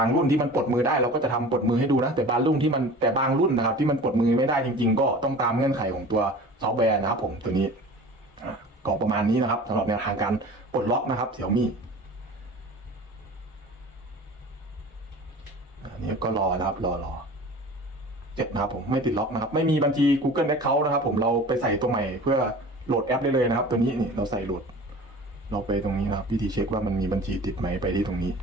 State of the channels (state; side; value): normal; both; correlation 0.40